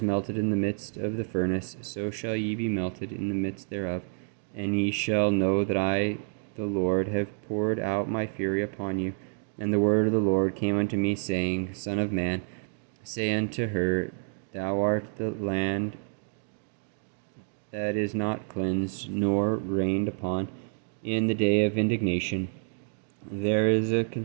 melted in the midst of the furnace, so shall ye be melted in the midst thereof. And ye shall know that I, the Lord, have poured out my fury upon you. And the word of the Lord came unto me, saying, Son of man, say unto her, Thou art the land that is not cleansed, nor rained upon in the day of indignation. There is a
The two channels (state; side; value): silent; left; 59 dB below the other